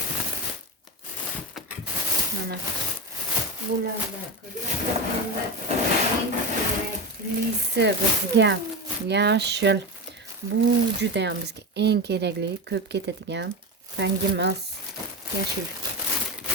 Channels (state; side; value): normal; both; correlation 0.21